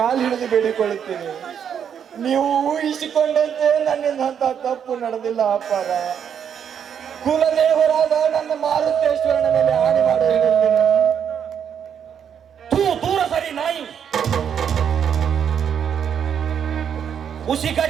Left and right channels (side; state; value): left; quieter; 8.2 dB